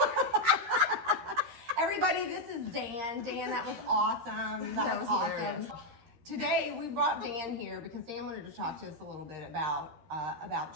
Everybody, this is Dan. Dan, that was awesome. That was awesome. Hilarious. Today we brought Dan here because Dan wanted to talk to us a little bit about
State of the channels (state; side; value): late; left; 13 ms